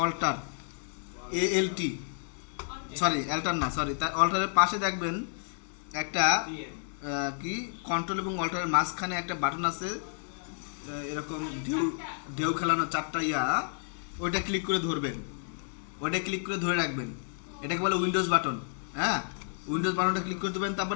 অল্টার, ALT, সরি অল্টার না, সরি, তার অল্টারের পাশে দেখবেন একটা কি কন্ট্রোল এবং অল্টারের মাঝখানে একটা বাটন আছে, এরকম ঢেউ খেলানো চারটা ওইটা ক্লিক করে ধরবেন, ওইটা ক্লিক করে ধরে রাখবেন। এটাকে বলে উইন্ডোজ বাটন। হ্যাঁ, উইন্ডোজ বাটনটা ক্লিক করে দেবেন,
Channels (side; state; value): right; silent; 57 dB below the other